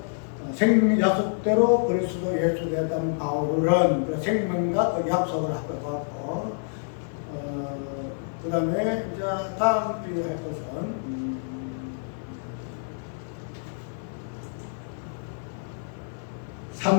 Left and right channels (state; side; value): silent; right; 59 dB below the other